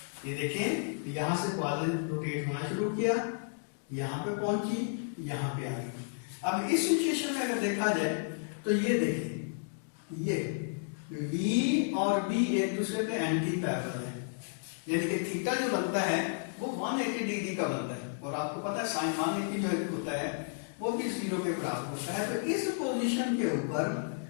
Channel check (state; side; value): silent; right; digital silence